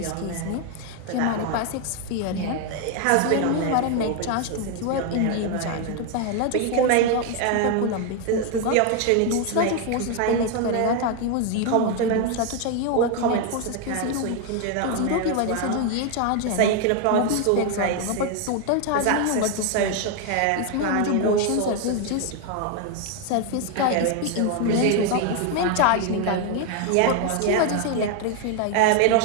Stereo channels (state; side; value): different; both; correlation 0.01